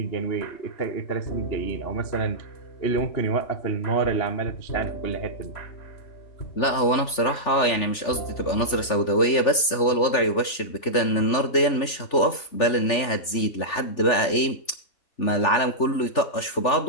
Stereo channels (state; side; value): late; right; 3.4 ms